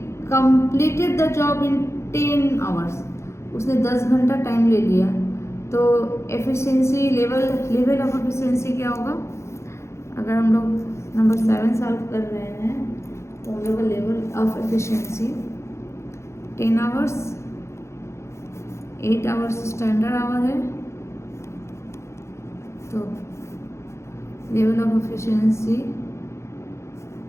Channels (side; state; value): right; late; 0.13 ms